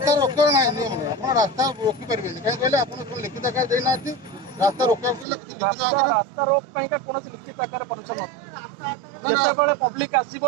ରୋକିବାର ନାହିଁ ନିୟମ ନାହିଁ ଆପଣ ରାସ୍ତା ରୋକି ପାରିବେନି କାହିଁ କହିଲେ ଆପଣ ଲିଖିତ ଆକାର ଦେଇନାହାନ୍ତି रास्ता रोकवा रास्ता रोक कौन लिखित आकार परमिशन जिते पब्लिक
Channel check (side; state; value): left; drops out; at 5.2 s